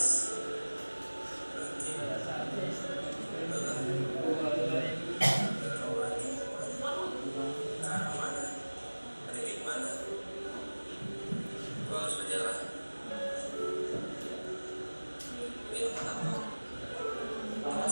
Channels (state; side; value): inverted; both; correlation -1.00